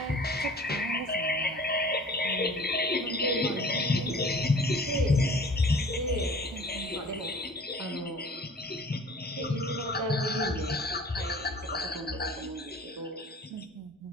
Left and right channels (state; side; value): normal; both; correlation 0.46